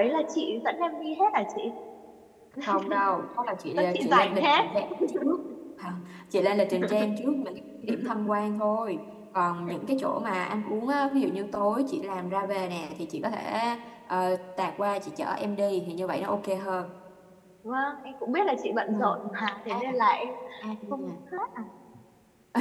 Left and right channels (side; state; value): both; identical; correlation 1.00